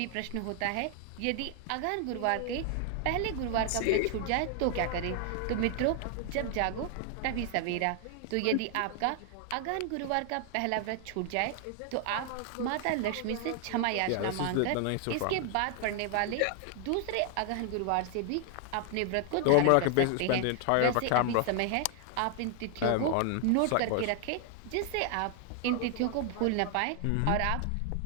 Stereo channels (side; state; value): both; different; correlation 0.00